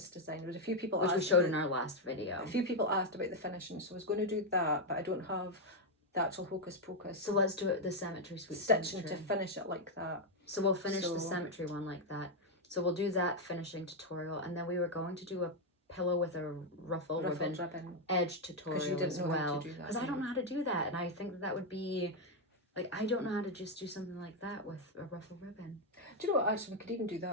design. There was a few people which we showed in our last video. A few people asked about the finishing, so I was going to do that, but I don't have the actual Hocus Pocus. So let's do it the Cemetery Suite stitching cemetery. To finish it like that. So we'll finish the cemetery one like that. So we'll do that finishing tutorial, and then we were going to do a pillow with a ruffled ribbon edge tutorial as well. Because I don't know how to do that, and I think that would be... Like, I don't know how to just do something like that with a ruffled ribbon. Do you know what, actually, we could even do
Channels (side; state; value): both; normal; correlation 0.02